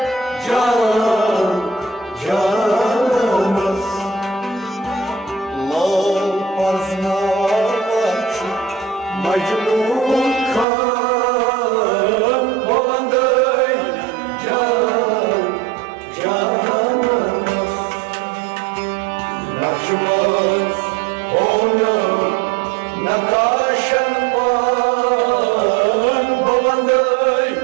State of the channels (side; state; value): left; drops out; at 10.7 s